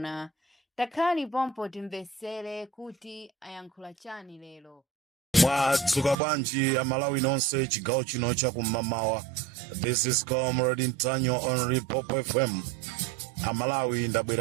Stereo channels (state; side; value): drops out; left; at 6.2 s